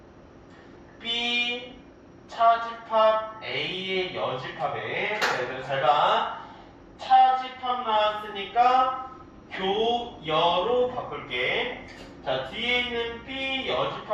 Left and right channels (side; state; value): both; identical; correlation 1.00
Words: B 차집합 A의 여집합에, 잘 봐. 차집합 나왔으니까 교여로 바꿀게. 자, 뒤에 있는 B